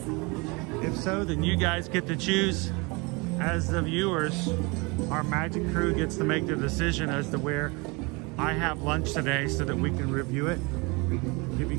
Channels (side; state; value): left; quieter; 27.6 dB